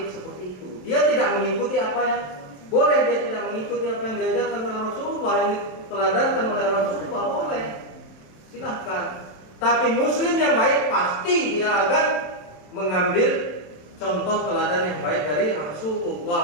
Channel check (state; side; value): late; right; 27 ms